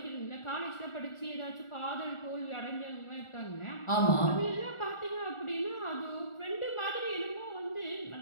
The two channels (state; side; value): late; right; 1.4 ms